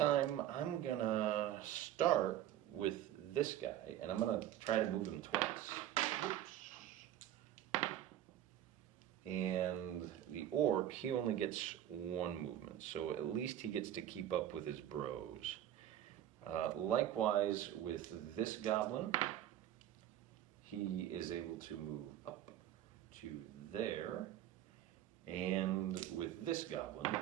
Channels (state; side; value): quieter; left; 11.9 dB